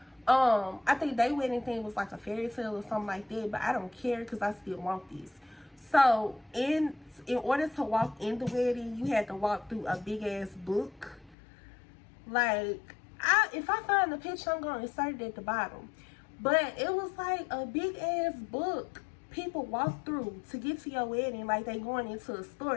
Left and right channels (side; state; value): right; drops out; at 11.4 s